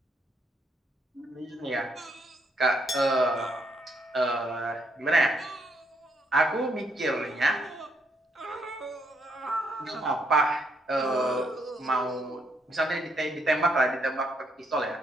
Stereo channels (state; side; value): normal; both; correlation 0.74